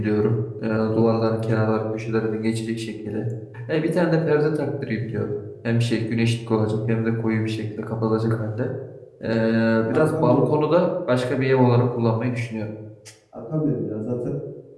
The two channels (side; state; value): both; identical; correlation 1.00